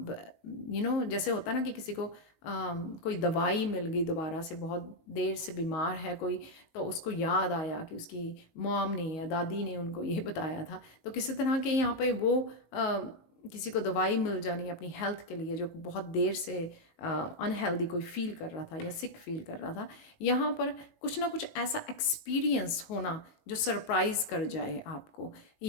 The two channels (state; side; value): late; right; 19 ms